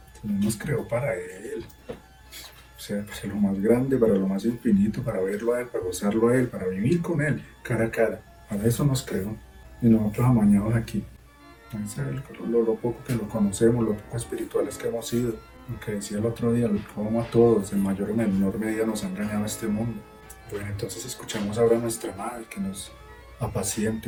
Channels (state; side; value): identical; both; correlation 1.00